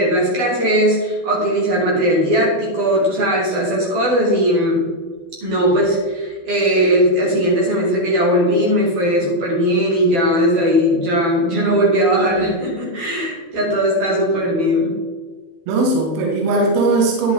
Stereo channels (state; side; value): late; left; 12 ms